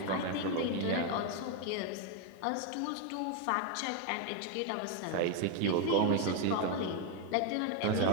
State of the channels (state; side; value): different; both; correlation 0.01